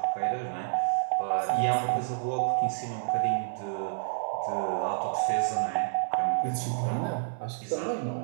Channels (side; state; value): left; silent; 58 dB below the other